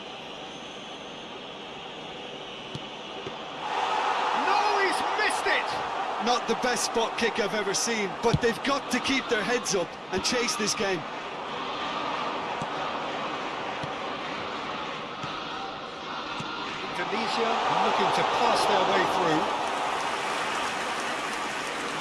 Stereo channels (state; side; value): identical; both; correlation 1.00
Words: No, he's missed it! Not the best spot kick I've ever seen, but they've got to keep their heads up and chase this game. Indonesia looking to pass their way through.